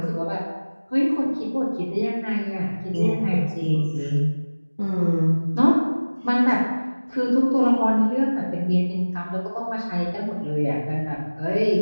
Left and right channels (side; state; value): both; inverted; correlation -1.00